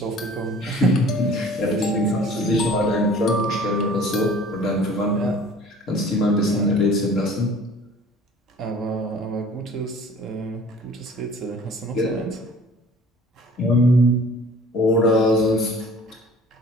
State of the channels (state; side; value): normal; both; correlation 0.48